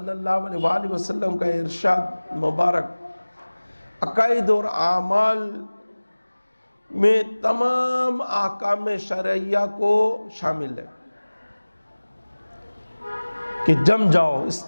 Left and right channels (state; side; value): inverted; both; correlation -1.00